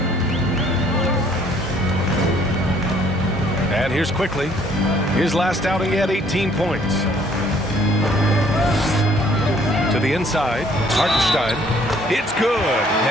And here's quickly. His last outing, he had 18 points. To the inside, Hartenstein. It's good.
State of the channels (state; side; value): normal; both; correlation 0.61